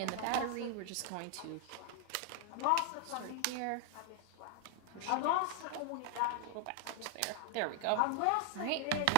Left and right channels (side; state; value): both; different; correlation 0.00